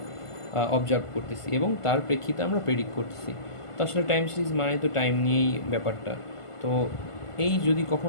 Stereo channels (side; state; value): right; late; 1.5 ms